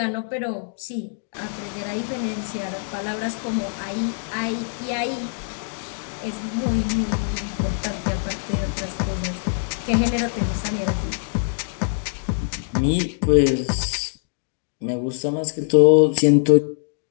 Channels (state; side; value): silent; right; digital silence